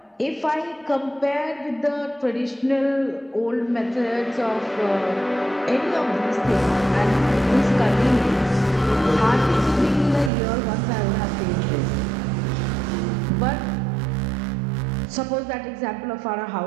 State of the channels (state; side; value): drops out; left; at 10.3 s